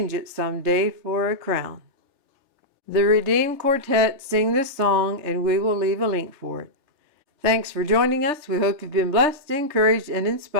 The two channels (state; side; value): late; left; 3.4 ms